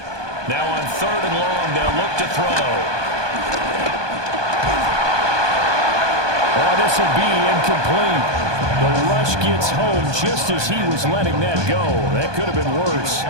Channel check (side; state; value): left; late; 1.2 ms